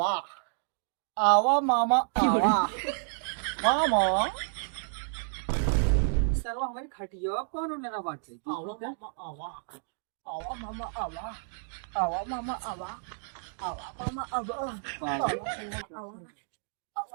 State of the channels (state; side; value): silent; left; digital silence